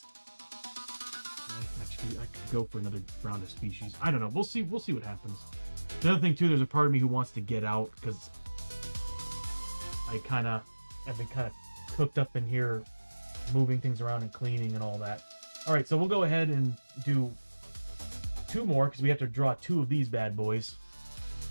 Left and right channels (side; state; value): both; inverted; correlation -1.00